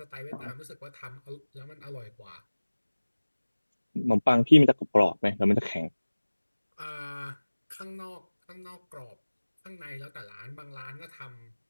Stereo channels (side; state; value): both; inverted; correlation -1.00